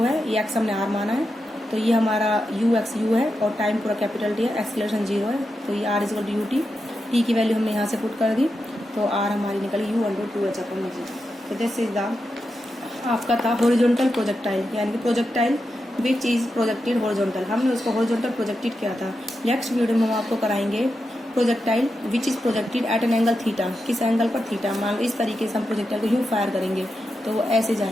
है, ये एक्स हमने आर माना है, तो ये हमारा यू एक्स यू है और टाइम पूरा कैपिटल टी है, एक्सेलरेशन 0 है, तो ये r is equal to u t. T की वैल्यू हमने यहाँ से पुट कर दी, तो आर हमारी निकली यू अंडर 2h अपॉन में जी। तो दिस इज द आपका था हॉरिजॉन्टल प्रोजेक्टाइल, यानी कि projectile which is projected horizontal. हमने उसको हॉरिजॉन्टल प्रोजेक्टेड किया था। नेक्स्ट वीडियो में हम आपको कराएंगे projectile which is projected at an angle theta, किस एंगल पर थीटा। मान लो इस तरीके से हम प्रोजेक्टाइल को यूँ फायर करेंगे तो वो ऐसे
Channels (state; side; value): normal; both; correlation 0.88